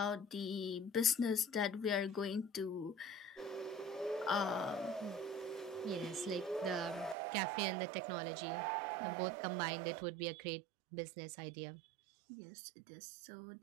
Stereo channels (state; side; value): drops out; left; at 7.2 s